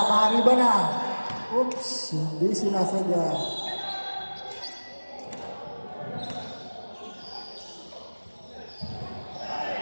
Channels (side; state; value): both; inverted; correlation -1.00